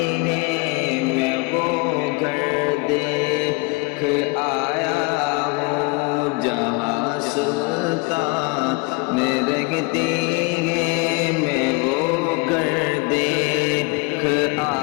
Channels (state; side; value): quieter; right; 27.2 dB